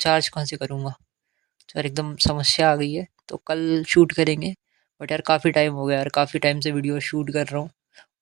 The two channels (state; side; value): quieter; left; 18.5 dB